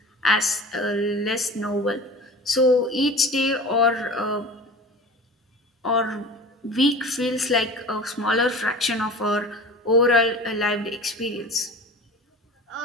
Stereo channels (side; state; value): both; normal; correlation 0.37